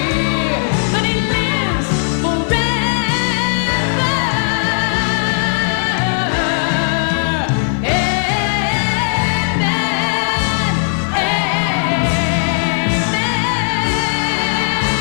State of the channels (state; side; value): silent; right; 69 dB below the other